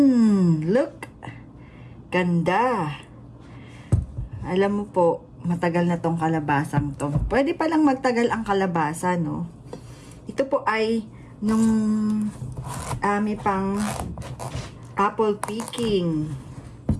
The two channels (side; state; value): both; identical; correlation 1.00